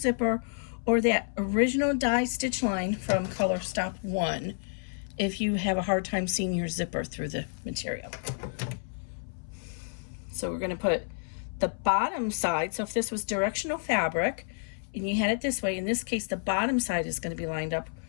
or that original die stitch line from color stop 1 if you have a hard time seeing your zipper through the material. So we're going to put the bottom side. So if this was directional fabric, and you had it this way, in this case, the bottom side is going to be lined up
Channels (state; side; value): silent; right; 58 dB below the other